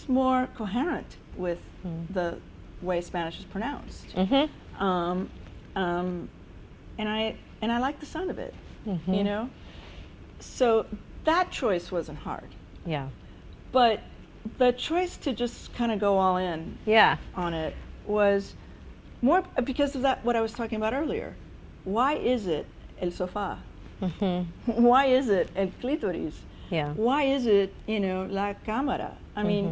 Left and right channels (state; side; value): identical; both; correlation 1.00